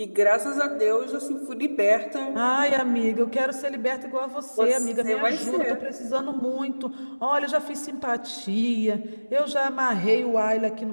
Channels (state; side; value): inverted; both; correlation -1.00